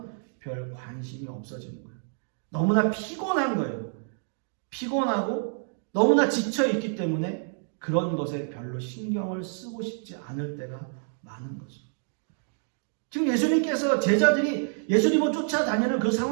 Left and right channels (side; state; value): left; silent; digital silence